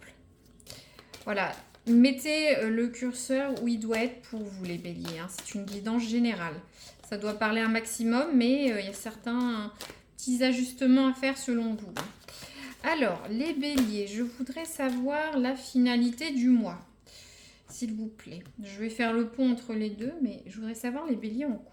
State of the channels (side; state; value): both; identical; correlation 1.00